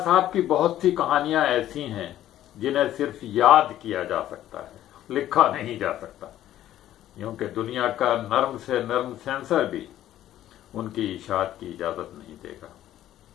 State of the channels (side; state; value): right; quieter; 12.7 dB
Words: صاحب کی بہت سی کہانیاں ایسی ہیں جنہیں صرف یاد کیا جا سکتا ہے، لکھا نہیں جا سکتا، کیونکہ دنیا کا نرم سے نرم سینسر بھی ان کی اشاعت کی اجازت نہیں دے گا۔